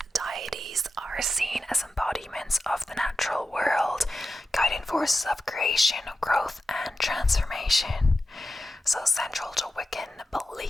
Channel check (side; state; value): both; normal; correlation 0.92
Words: deities are seen as embodiments of the natural world, guiding forces of creation, growth, and transformation. So central to Wiccan